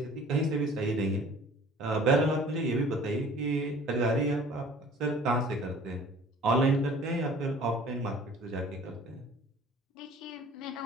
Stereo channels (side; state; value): both; normal; correlation 0.49